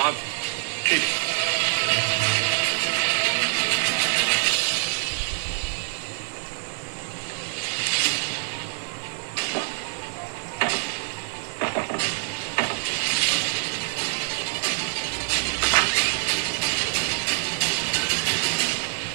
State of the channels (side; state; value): left; silent; digital silence